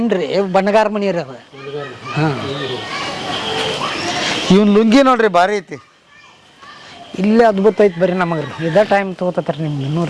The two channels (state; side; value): identical; both; correlation 1.00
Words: ಬಣ್ಣಗಾರ ಮನಿ ರೀ ಅದು. ಹಾಂ ಇವನ್ ಲುಂಗಿ ನೋಡ್ರಿ ಭಾರಿ ಐತಿ. ಇಲ್ಲೇ ಅದ್ಭುತ ಐತಿ ಬರ್ರಿ ನಮಗ್ರಿ. ಇದ ಟೈಮ್ ತಗೋತಾರ ನಿಮ್ಗೆ ಇನ್ನೂ